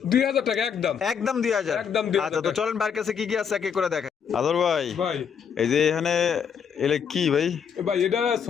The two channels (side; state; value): right; quieter; 7.2 dB